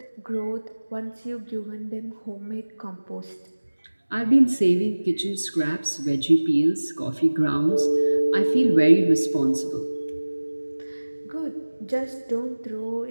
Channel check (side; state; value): both; inverted; correlation -1.00